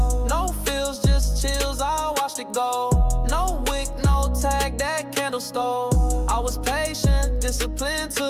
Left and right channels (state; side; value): identical; both; correlation 1.00